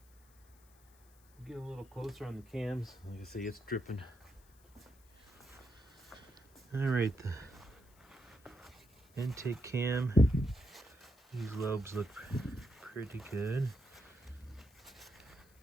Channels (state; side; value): noise; left; hiss, 29 dB below the sound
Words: get a little closer on the cams. Like I say, it's dripping. All right, the intake cam. These lobes look pretty good.